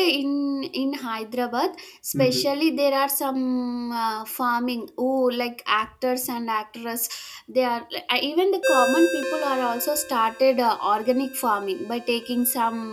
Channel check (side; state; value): both; identical; correlation 1.00